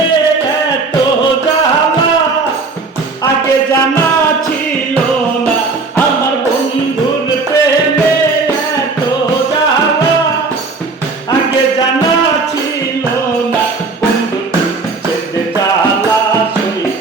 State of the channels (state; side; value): quieter; left; 4.0 dB